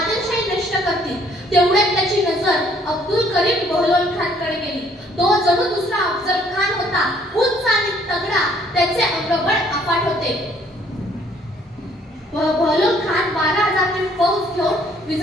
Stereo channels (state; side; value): normal; both; correlation 0.63